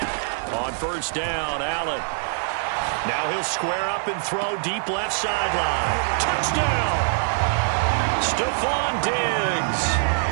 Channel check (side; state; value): left; silent; 63 dB below the other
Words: On first down, Allen. Now he'll square up and throw deep left sideline. Touchdown! Stephon